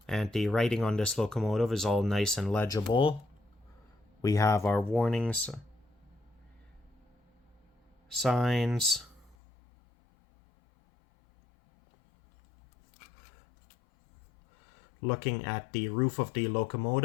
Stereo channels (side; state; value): right; drops out; at 9.3 s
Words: And the writing on this locomotive is all nice and legible. We have our warnings, signs. Looking at the roof of the